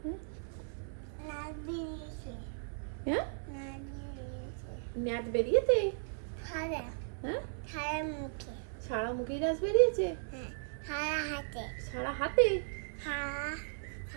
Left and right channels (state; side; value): silent; left; 54 dB below the other